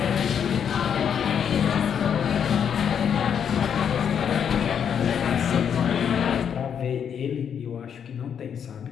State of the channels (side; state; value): right; quieter; 8.0 dB